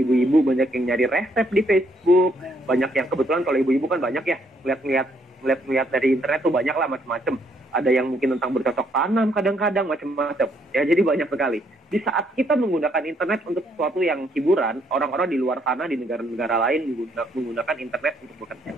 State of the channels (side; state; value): both; normal; correlation 0.70